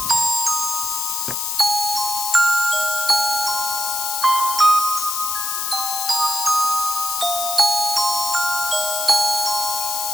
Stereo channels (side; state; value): left; noise; hiss, 1 dB below the sound